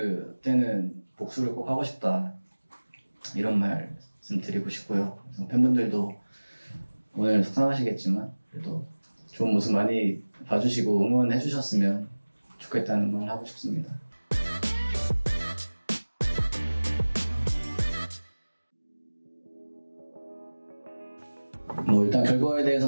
때는 복수를 꼭 하고 싶다 이런 말씀 드리고 싶고요. 그래서 팬분들도 오늘 속상하시겠지만 그래도 좋은 모습 많이 봐주시고 응원해 주셨으면 좋겠다는 말 하고 싶습니다. 뭐 일단 결과에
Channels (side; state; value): both; inverted; correlation -1.00